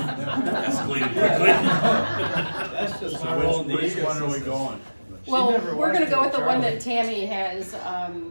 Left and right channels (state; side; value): inverted; both; correlation -1.00